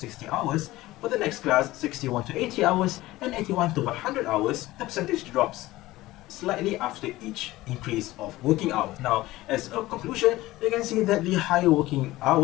hours, for the next class 61 to 80 hours and 81 to 100 hours, the percentage drops slightly after each increase of working hours. Now, as a conclusion, you can see that the higher working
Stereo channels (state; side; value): quieter; right; 17.7 dB